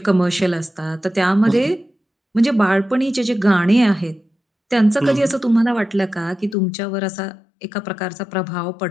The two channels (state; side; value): drops out; right; at 6.6 s